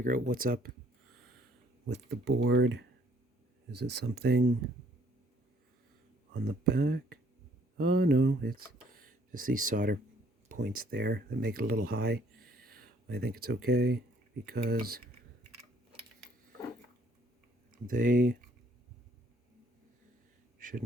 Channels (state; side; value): normal; both; correlation 0.63